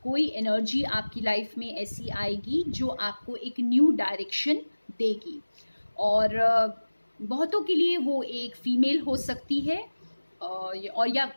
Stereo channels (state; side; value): inverted; both; correlation -1.00